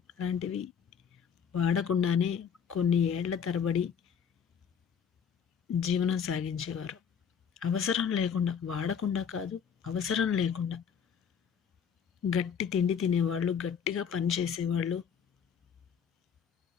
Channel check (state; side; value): quieter; right; 7.3 dB